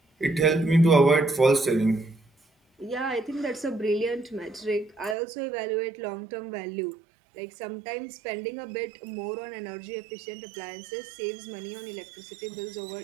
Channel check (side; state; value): left; drops out; at 5.2 s